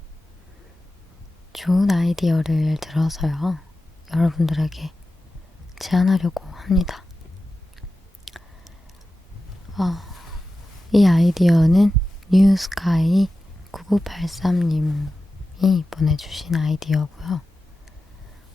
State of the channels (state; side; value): normal; both; correlation 0.93